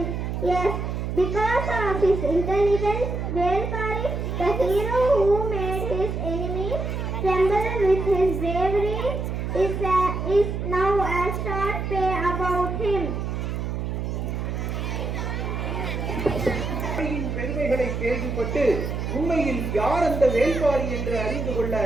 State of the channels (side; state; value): right; noise; hum, 3 dB below the sound